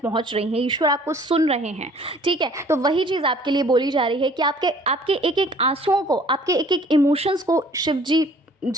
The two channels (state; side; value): normal; both; correlation 0.54